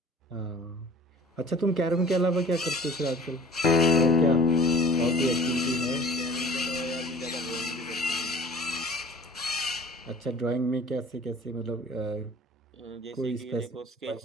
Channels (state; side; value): normal; both; correlation 0.46